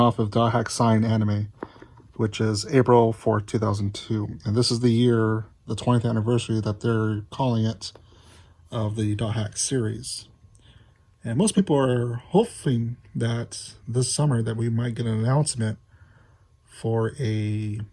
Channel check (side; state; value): both; identical; correlation 1.00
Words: of Dothack Sign Anime, which is April 4th, 2002. And this is the year, the 20th anniversary that they're calling it, of the Dothack series. And most people are hoping that this summer that we might get an announcement for a